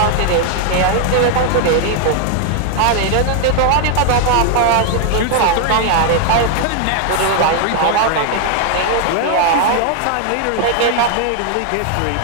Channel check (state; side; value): different; both; correlation 0.00